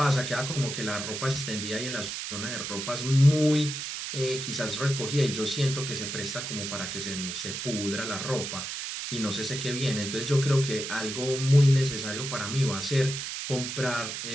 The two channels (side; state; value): right; noise; hiss, 5 dB below the sound